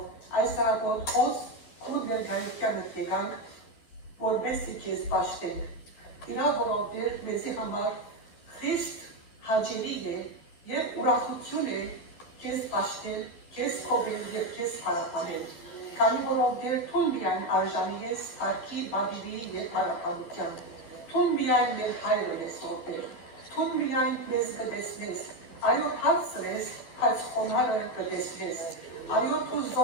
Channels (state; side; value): late; right; 12 ms